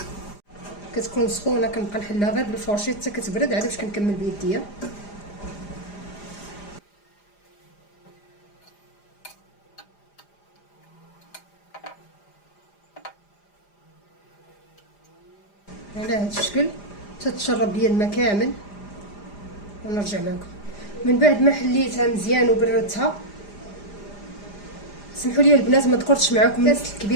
كتكون سخونه كنبقى نحلها غير بالفورشيط حتى كتبرد عاد باش كنكمل بيديا. على هذا الشكل تتشرب ليا الماء كامل ونرجع معكم. من بعد ما حليتها مزيان وبردتها، سمحوا لي البنات ما ذكرتش معكم الكاس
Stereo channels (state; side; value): late; right; 4.9 ms